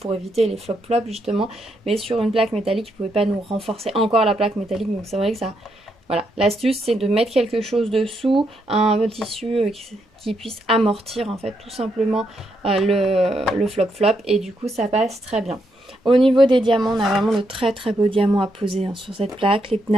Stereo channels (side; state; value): both; normal; correlation 0.79